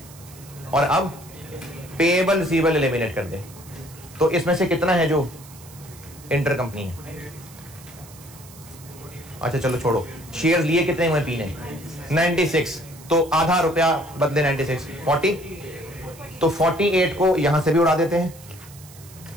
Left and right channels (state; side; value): noise; right; hiss, 20 dB below the sound